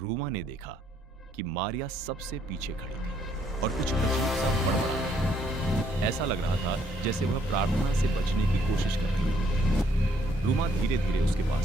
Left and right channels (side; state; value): both; normal; correlation 0.68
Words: ने देखा कि मारिया सबसे पीछे खड़ी थी और कुछ अजीब सा बड़बड़ा रही थी। ऐसा लग रहा था जैसे वह प्रार्थना से बचने की कोशिश कर रही थी। रूमा धीरे धीरे उसके